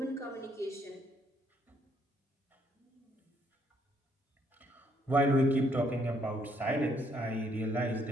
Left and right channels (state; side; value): normal; both; correlation 0.70